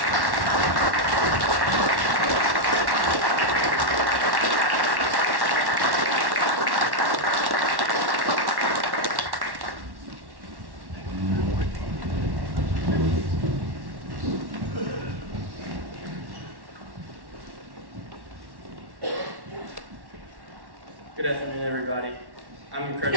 Good afternoon, everybody. I'm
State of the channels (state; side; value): late; left; 1.1 ms